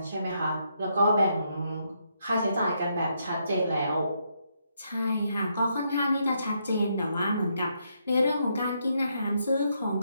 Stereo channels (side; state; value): both; inverted; correlation -0.77